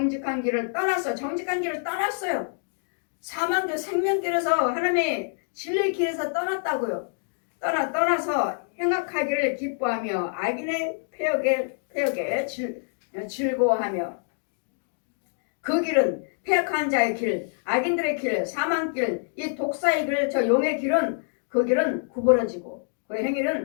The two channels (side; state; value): right; silent; digital silence